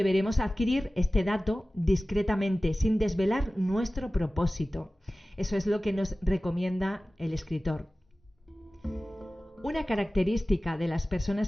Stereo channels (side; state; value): both; normal; correlation 0.97